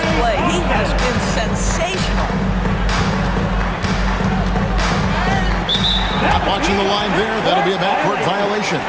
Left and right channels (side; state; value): both; identical; correlation 1.00